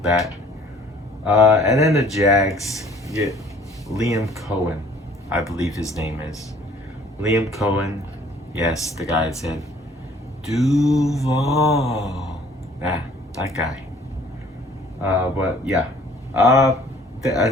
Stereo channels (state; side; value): normal; both; correlation 0.56